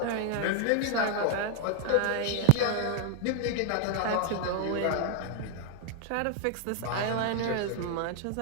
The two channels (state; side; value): different; both; correlation 0.00